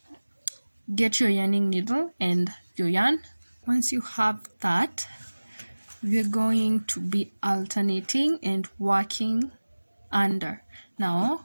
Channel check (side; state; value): both; inverted; correlation -1.00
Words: get your yarning needle and your yarn. Once you have that, we're going to be alternating and working under.